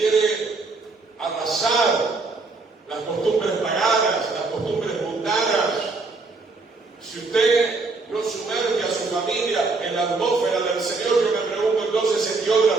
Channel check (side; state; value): left; quieter; 3.8 dB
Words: arrasar las costumbres paganas, las costumbres mundanas. Si usted no sumerge a su familia en la atmósfera del Señor, yo me pregunto entonces en qué otra